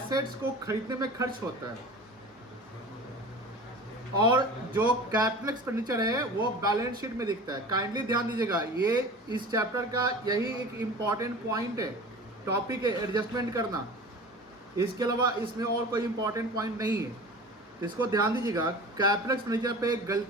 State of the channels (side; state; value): both; normal; correlation 0.37